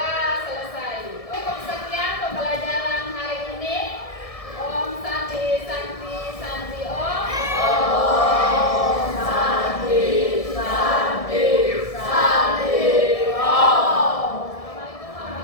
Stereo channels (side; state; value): right; late; 1.7 ms